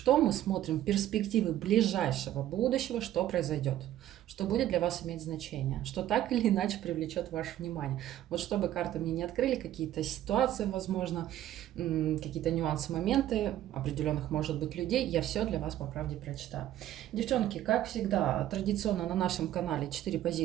мы смотрим? Перспективы ближайшего будущего, что произойдет, что будет для вас иметь значение, что так или иначе привлечет ваше внимание. Вот чтобы карты мне не открыли какие-то ситуации, возможно, какие-то нюансы, моменты определенных, может быть, людей, я все для вас по правде прочитаю. Девчонки, как всегда, традиционно на нашем канале 4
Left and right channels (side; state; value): left; quieter; 12.8 dB